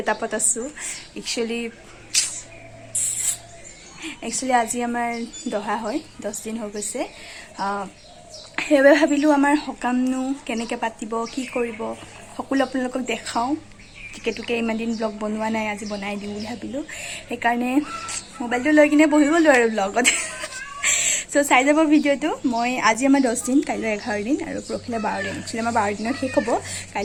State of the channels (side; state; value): both; identical; correlation 1.00